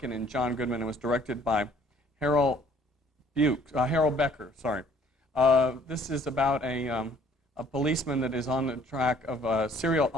and John Goodman. It was directed by Harold Becker. Sorry. This is about a policeman that is on the trail of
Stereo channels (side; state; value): both; normal; correlation 0.58